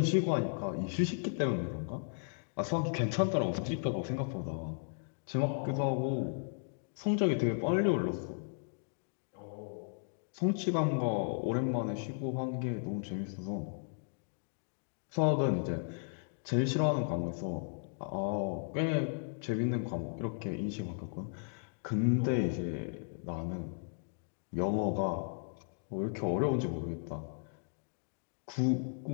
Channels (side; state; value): right; silent; digital silence